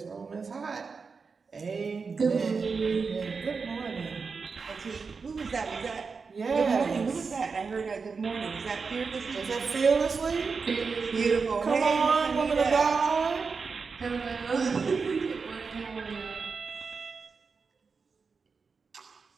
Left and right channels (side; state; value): left; quieter; 5.0 dB